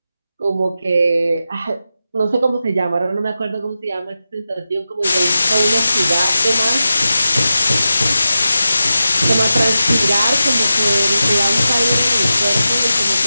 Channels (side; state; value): both; inverted; correlation -0.91